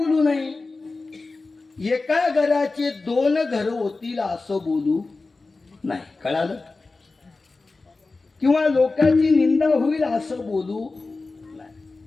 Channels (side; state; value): right; quieter; 3.6 dB